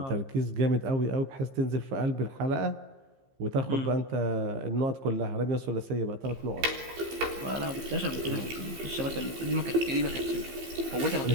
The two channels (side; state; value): left; late; 15 ms